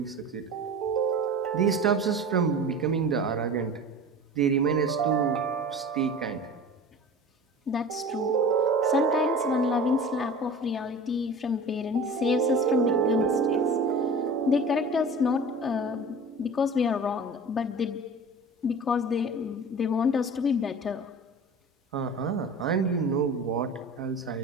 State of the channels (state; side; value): normal; both; correlation 0.37